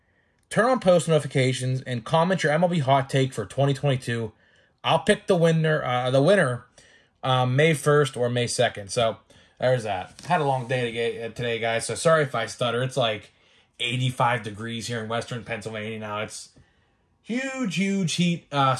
turn on post notifications, and comment your MLB hot take for 2022. I'll pick the winner May 1st or May 2nd. So there's that. Had a long day today, guys, so sorry if I stutter. It's like 85 degrees here in western Pennsylvania now. It's huge heat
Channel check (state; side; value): identical; both; correlation 1.00